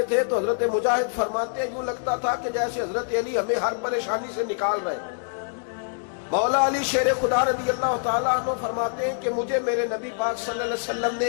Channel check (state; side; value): silent; right; digital silence